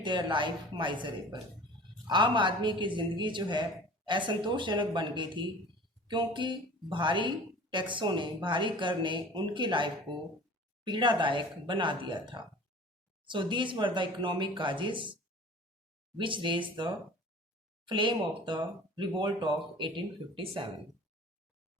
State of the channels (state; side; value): normal; both; correlation 0.42